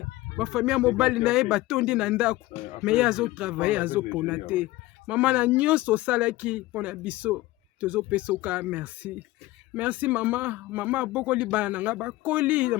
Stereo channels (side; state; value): right; quieter; 18.5 dB